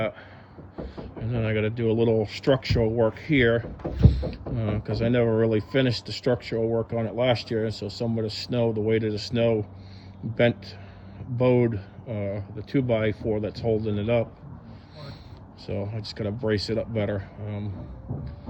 And then I got to do a little structural work here because I never really finished the structural work on it last year. So some of the snow, the weight of the snow, bowed the 2x4 that's holding it up. So I just got to brace it up better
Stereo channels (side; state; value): both; identical; correlation 1.00